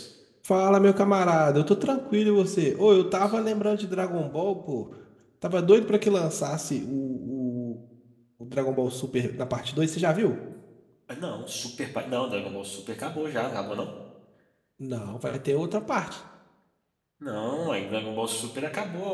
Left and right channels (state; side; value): identical; both; correlation 1.00